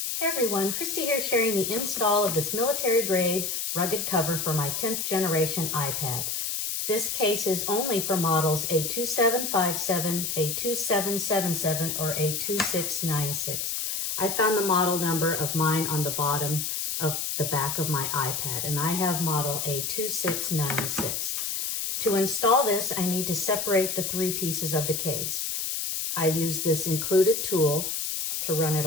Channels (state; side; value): noise; left; hiss, 2 dB below the sound